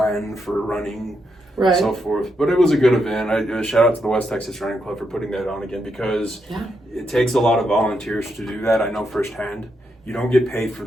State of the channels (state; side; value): normal; both; correlation 0.81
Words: for running, and so forth. But it was a good event. I shout out to the West Texas Running Club for putting that on again because it takes a lot of volunteers to do that. I know firsthand. You don't get paid for